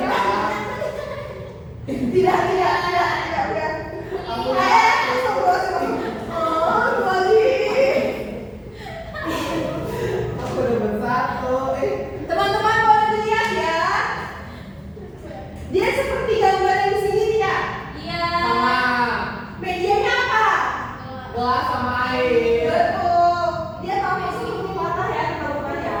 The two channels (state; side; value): identical; both; correlation 1.00